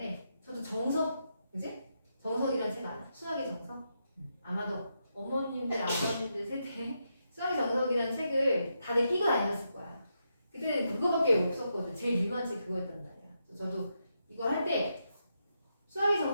저도 정석, 그지? 정석이라는 책 알아? 수학의 정석? 아마도 어머님들, 아버님들 세대 수학의 정석이라는 책을 다들 끼고 다녔을 거야. 그때는 그거밖에 없었거든. 제일 유명한 책이 그거였단 말이야. 저도 이거 할 때 수학의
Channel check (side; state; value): both; inverted; correlation -0.83